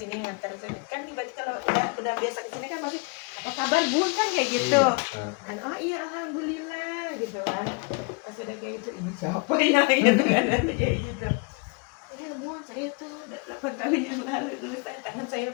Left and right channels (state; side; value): quieter; right; 32.7 dB